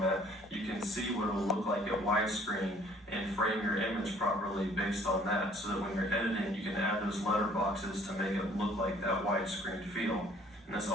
you can see what it will look like at widescreen and frame your image properly based on that so that when you're editing you can add those letter boxes to make it look like that widescreen feel. And this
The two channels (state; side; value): normal; both; correlation 0.57